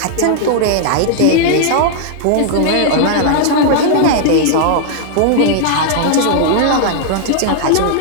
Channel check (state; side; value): different; both; correlation -0.01